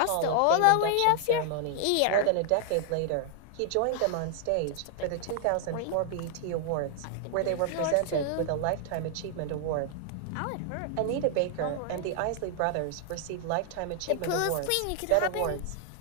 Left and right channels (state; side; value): different; both; correlation 0.00